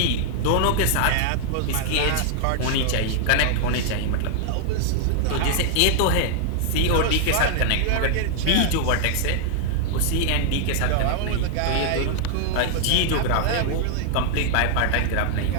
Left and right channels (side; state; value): both; different; correlation 0.00